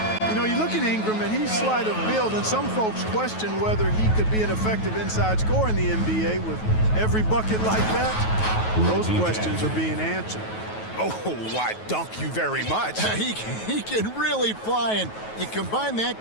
You know, you look at Ingram, and he's slight of build, and some folks question whether he could be an effective inside scorer in the NBA with every bucket like that. Those questions are being answered. Oh, why, dunk you very much. He can really fly, and you combine that,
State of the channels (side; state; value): right; late; 9.3 ms